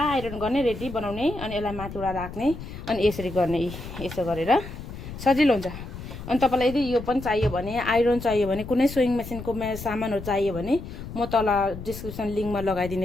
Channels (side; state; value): left; noise; rumble, 11 dB below the sound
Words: आइरन गर्ने रेडी बनाउने, अनि यसलाई माथिबाट राख्ने, अनि यसरी गर्ने, यसो गरेर सजिलो हुन्छ। अनि तपाईँलाई यदि यो पनि चाहियो भने, आइरन चाहियो भने, कुनै सोइङ मेसिनको सामानहरू चाहियो भने म तल डिस्क्रिप्सन लिङ्कमा